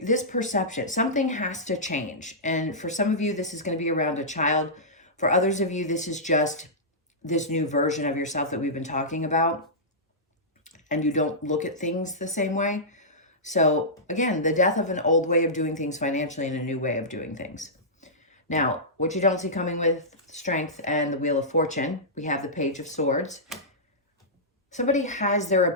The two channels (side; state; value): both; normal; correlation -0.15